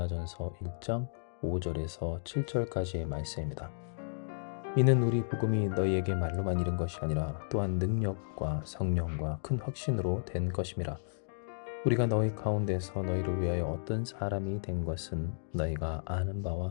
1장 5절에서 7절까지의 말씀입니다. 이는 우리 복음이 너희에게 말로만 이른 것이 아니라 또한 능력과 성령과 큰 확신으로 된 것임이라. 우리가 너희 가운데서 너희를 위하여 어떤 사람이 된 것은 너희가 아는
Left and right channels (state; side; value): silent; right; digital silence